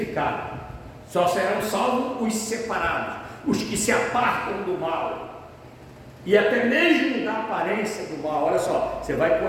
Só serão salvos os separados. os que se apartam do mal, e até mesmo da aparência do mal. Olha só, você vai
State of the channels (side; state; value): both; identical; correlation 1.00